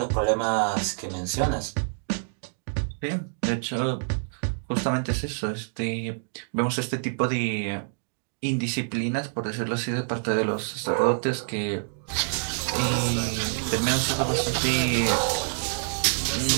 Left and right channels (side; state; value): left; silent; digital silence